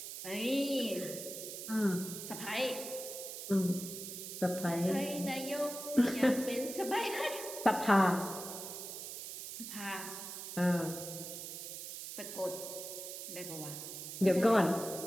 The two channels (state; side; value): noise; right; hiss, 8 dB below the sound